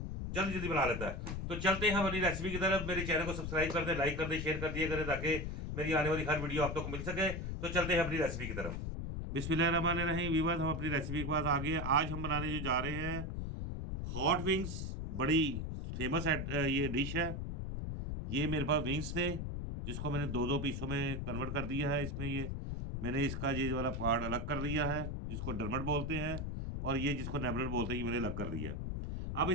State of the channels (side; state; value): left; noise; rumble, 4 dB below the sound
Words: जल्दी जल्दी बना लेता है। तो चलते हैं हम अपनी रेसिपी की तरफ। मेरे चैनल को सब्सक्राइब कर दें, लाइक कर दें, शेयर कर दिया करें ताकि मेरी आने वाली हर वीडियो आप तक मिल सके। तो चलते हैं अपनी रेसिपी की तरफ। बिस्मिल्लाहिर्रहमानिर्रहीम। व्यूअर्स, हम अपनी रेसिपी के पास आ गए हैं। आज हम बनाने जो जा रहे हैं हॉट विंग्स। बड़ी फेमस ये डिश है। ये मेरे पास विंग्स थे जिसको मैंने दो दो पीसों में कन्वर्ट कर दिया है। इसमें ये मैंने इसका ये वाला पार्ट अलग कर दिया है जिसको डरमट बोलते हैं, और ये जिसको नेबलर बोलते हैं ये मैंने अलग कर दिया है। अब